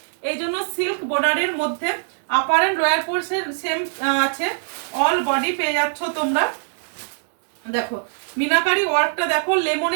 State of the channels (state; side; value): silent; left; digital silence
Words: এই জন্য সিল্ক বর্ডারের মধ্যে upper and lower portion same আছে, অল বডি পেয়ে যাচ্ছ তোমরা। দেখো মিনাকারি ওয়ার্কটা দেখো,